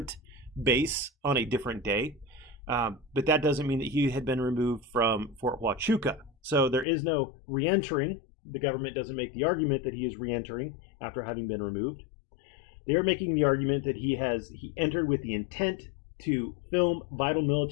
base on a different day. But that doesn't mean that he had been removed from Fort Huachuca. So there is no re-entering. The government doesn't make the argument that he is re-entering after having been removed. They are making the argument that he entered with the intent to film vital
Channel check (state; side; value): drops out; right; at 6.9 s